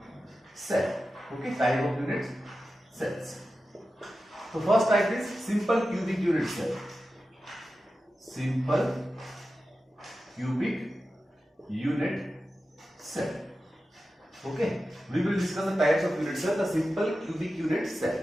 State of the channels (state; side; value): normal; both; correlation 0.93